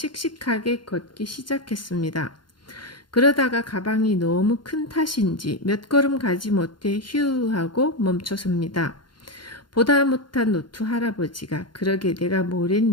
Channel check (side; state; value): right; late; 0.72 ms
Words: 걷기 시작했습니다. 그러다가 가방이 너무 큰 탓인지 몇 걸음 가지 못해 휴 하고 멈춰섭니다. 보다 못한 노트 할아버지가 그러게 내가